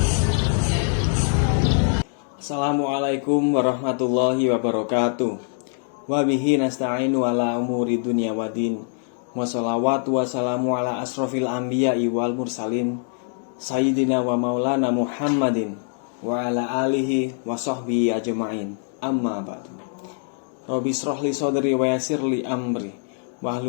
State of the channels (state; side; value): silent; right; 63 dB below the other